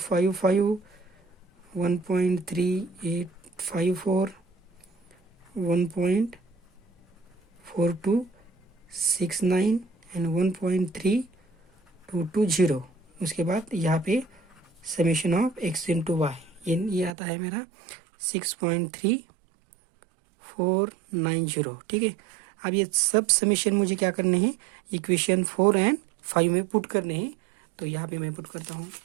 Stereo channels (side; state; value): left; drops out; at 17.2 s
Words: 1.3854, 1.4269 एंड 1.3220। उसके बाद यहाँ पे summation of x into y ये आता है मेरा 6.3490। ठीक है, अब ये सब समेशन मुझे क्या करने हैं, इक्वेशन 4 एंड 5 में पुट करने हैं। तो यहाँ पे मैं पुट करता हूँ।